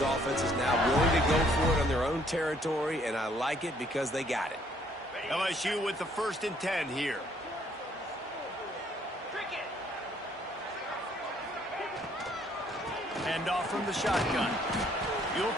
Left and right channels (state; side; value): normal; both; correlation 0.64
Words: offenses now, willing to go for it on their own territory, and I like it because they got it. LSU with the 1st and 10 here. Hand off from the shotgun. You'll